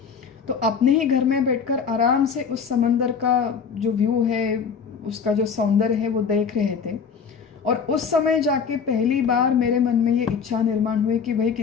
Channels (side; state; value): right; quieter; 6.3 dB